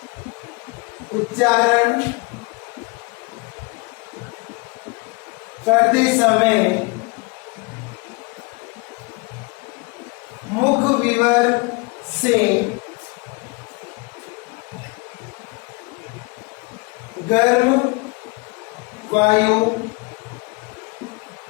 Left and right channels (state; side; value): quieter; right; 27.6 dB